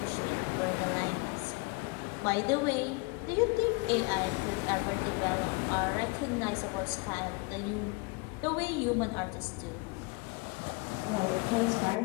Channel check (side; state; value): right; quieter; 27.4 dB